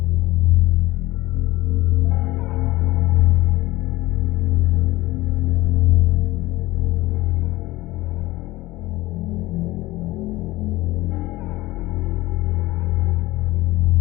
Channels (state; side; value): quieter; right; 18.7 dB